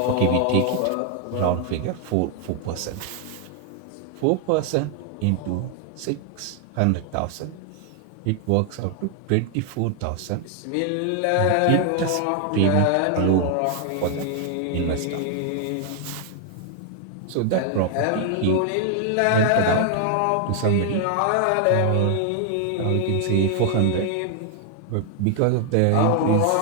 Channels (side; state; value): both; different; correlation 0.00